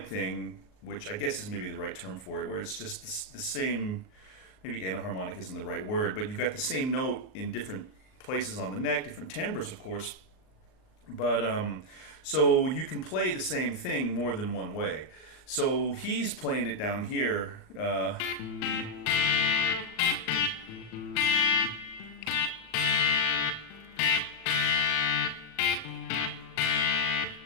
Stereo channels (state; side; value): late; right; 38 ms